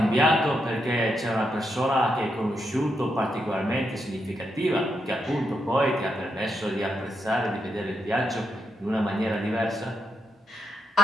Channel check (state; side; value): normal; both; correlation 0.82